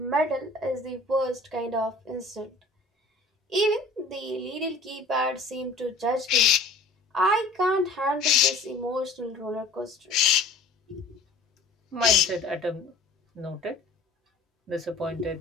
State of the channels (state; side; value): quieter; right; 3.2 dB